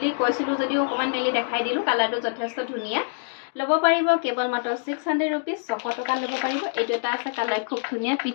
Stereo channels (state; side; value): silent; right; digital silence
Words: কৈছিলোঁ যদিও অকণমান মেলি দেখাই দিলোঁ কালাৰটো যথেষ্ট ধুনীয়া ল'ব পাৰিব কেৱল মাত্ৰ 600 ৰুপিজ 600 টকা ল'ব পাৰিব এইটো এটা আছে কালাৰ খুব ধুনীয়া